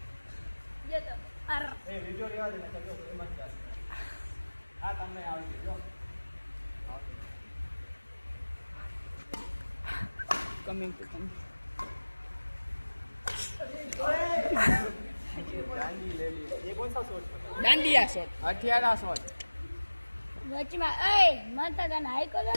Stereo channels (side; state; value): both; inverted; correlation -1.00